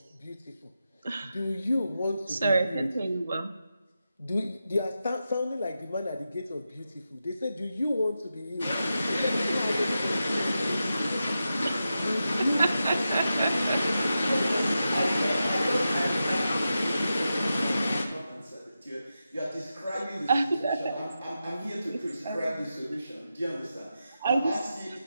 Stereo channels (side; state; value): both; inverted; correlation -0.90